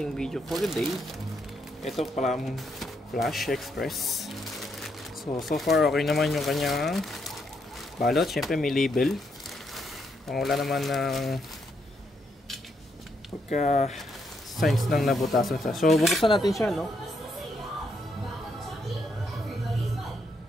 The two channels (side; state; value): both; normal; correlation 0.77